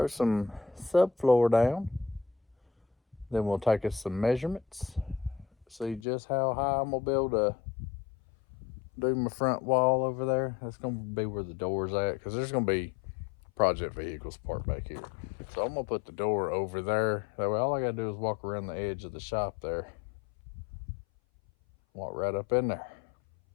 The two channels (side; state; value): right; drops out; at 6.0 s